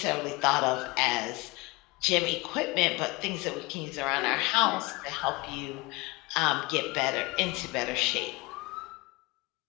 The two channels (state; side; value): quieter; right; 23.3 dB